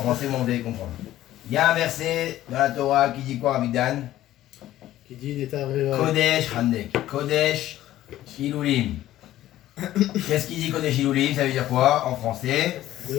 français, mais vous allez comprendre. Il y a un verset dans la Torah qui dit quoi, Abidan? Qui dit Neta Revae. Kodesh Handek. Kodesh Hilulim. Qu'est-ce qu'il dit Kodesh Hilulim? Ça veut dire quoi en français? Ça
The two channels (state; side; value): quieter; right; 14.0 dB